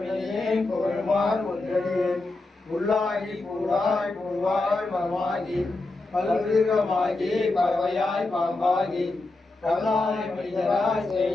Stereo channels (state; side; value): quieter; right; 3.1 dB